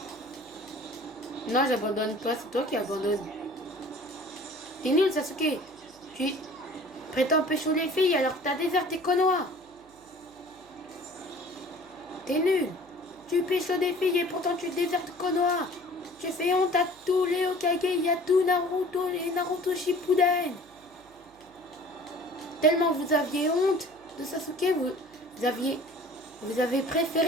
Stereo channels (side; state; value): right; noise; hum, 30 dB below the sound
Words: Non, j'abandonne pas, c'est toi qui abandonnes. T'es nul, Sasuke. Tu prétends pécho les filles alors que t'as déserté Konoha. T'es nul. Tu pécho des filles et pourtant tu désertes Konoha. Tu fais honte à tous les Hokage et à tout Naruto et Naruto Shippuden. Tellement vous aviez honte de Sasuke, vous avez